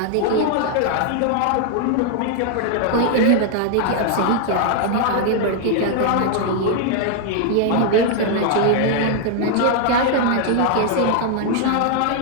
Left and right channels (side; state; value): both; different; correlation 0.00